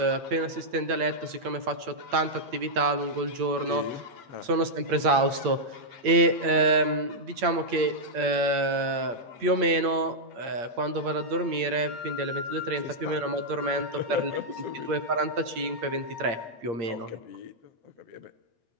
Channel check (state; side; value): late; left; 8.6 ms